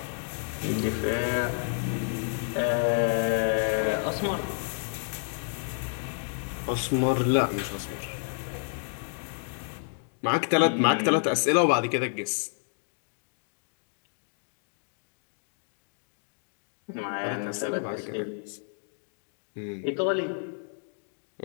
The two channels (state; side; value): silent; right; digital silence